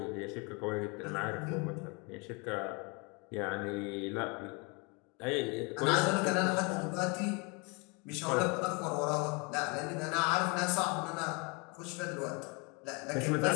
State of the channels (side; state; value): right; quieter; 30.4 dB